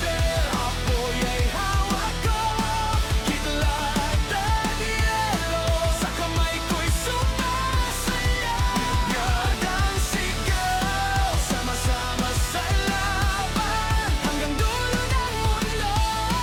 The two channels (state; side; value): identical; both; correlation 1.00